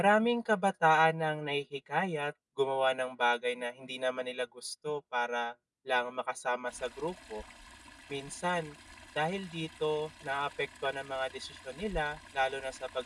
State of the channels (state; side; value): identical; both; correlation 1.00